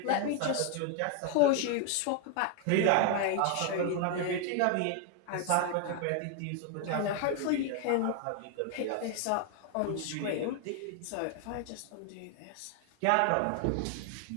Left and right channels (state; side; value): different; both; correlation 0.00